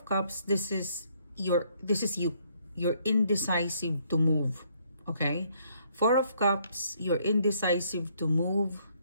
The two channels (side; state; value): both; inverted; correlation -0.68